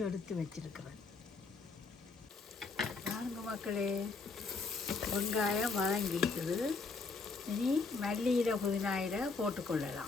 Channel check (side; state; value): right; quieter; 4.2 dB